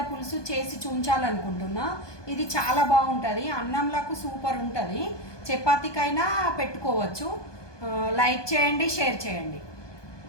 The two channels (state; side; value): late; right; 1.2 ms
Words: పులుసు చేసి చూపించాలనుకుంటున్నా. ఇది చాలా బాగుంటుంది, అన్నంలకు సూపర్ ఉంటుంది, చపాతీకైనా పెట్టుకోవచ్చు. లైక్ చేయండి, షేర్ చేయండి.